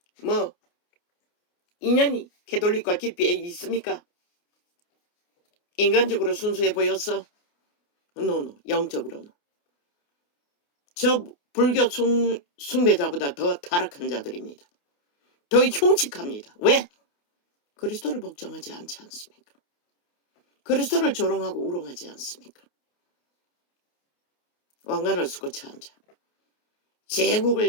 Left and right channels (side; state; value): right; late; 28 ms